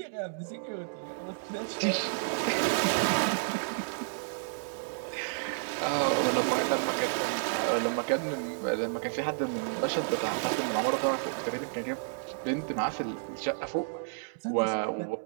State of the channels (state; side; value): silent; left; 57 dB below the other